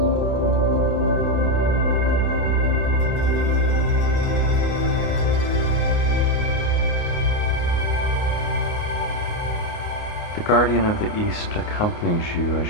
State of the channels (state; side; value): late; right; 29 ms